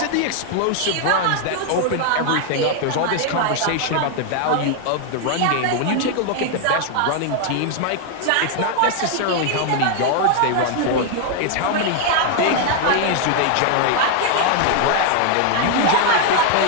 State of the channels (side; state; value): both; different; correlation 0.00